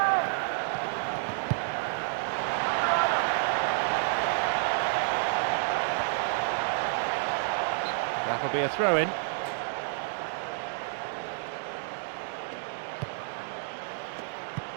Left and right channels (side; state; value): left; silent; digital silence